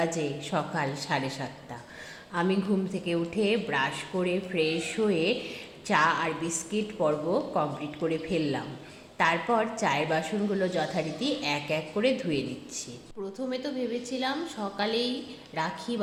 সকাল 7:30। আমি ঘুম থেকে উঠে ব্রাশ করে ফ্রেশ হয়ে চা আর বিস্কিট পর্ব কমপ্লিট করে ফেললাম। তারপর চায়ের বাসনগুলো যথারীতি এক এক করে ধুয়ে নিচ্ছি। প্রথমে তো ভেবেছিলাম সকালেই রাখি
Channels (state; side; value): identical; both; correlation 1.00